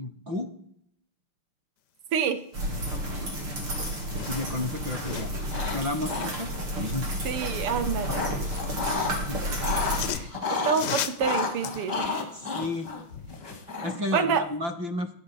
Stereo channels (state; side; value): late; left; 6.7 ms